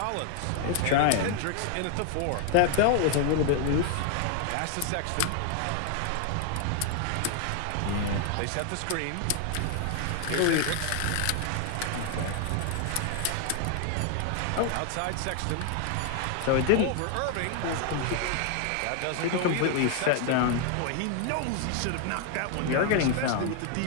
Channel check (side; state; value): both; different; correlation 0.00